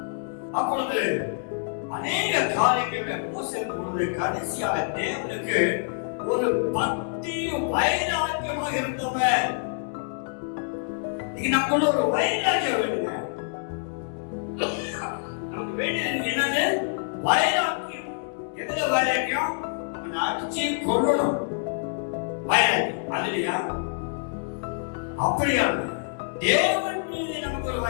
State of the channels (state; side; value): silent; right; digital silence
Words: அப்பொழுது அநேக காரியங்கள் மோசே பொழுது கடைசியாக தேவனுக்கு ஒரு பக்தி வைராக்கியமா இருந்தவர். நமக்குள்ள ஒரு வைராக்கியம் வேணுங்க. நமக்கு வேண்டியது என்னது? வைராக்கியம். எதுல வைராக்கியம்? அடிச்சு கொள்ளணும் வைராக்கியம், அதுலயா? அப்படியா? தேவன் மீது நமக்கு ஒரு